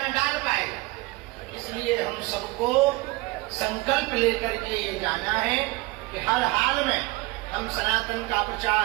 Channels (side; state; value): left; quieter; 22.4 dB